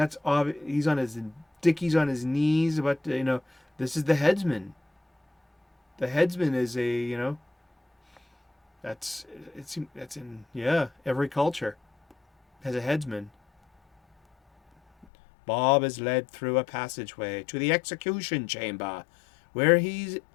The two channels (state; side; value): drops out; right; at 15.1 s